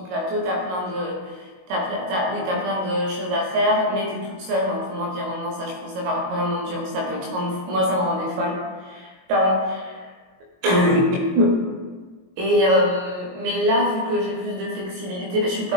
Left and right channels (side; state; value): left; late; 22 ms